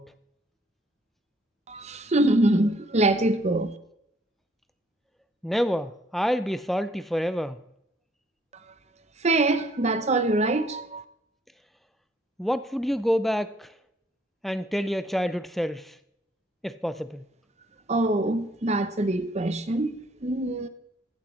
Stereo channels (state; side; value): normal; both; correlation 0.64